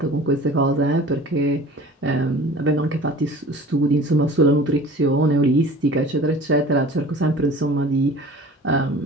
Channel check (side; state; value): both; normal; correlation 0.43